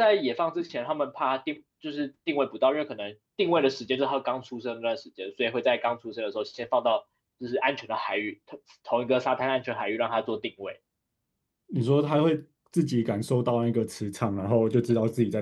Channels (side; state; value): both; identical; correlation 1.00